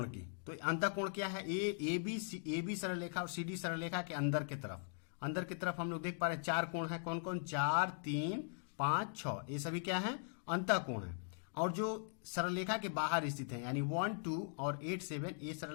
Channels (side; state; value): right; silent; digital silence